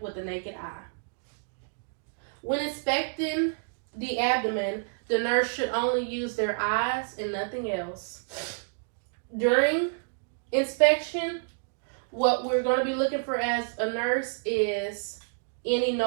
with the naked eye. When inspecting the abdomen, the nurse should only use their eyes and nothing else. During inspection, what we're going to be looking for as a nurse is any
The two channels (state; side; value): silent; left; digital silence